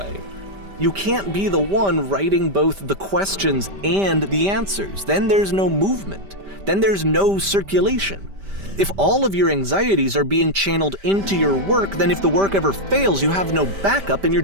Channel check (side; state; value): left; late; 5.1 ms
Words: You can't be the one writing both the questions and the answers. Then there's no movement. Then there's no circulation. If all of your anxieties are being channeled into your work, then if the work ever fails, you have no backup and you're